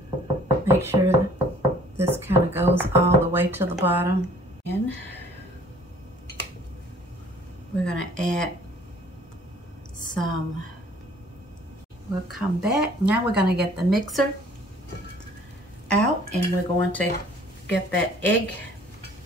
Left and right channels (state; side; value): normal; both; correlation 0.55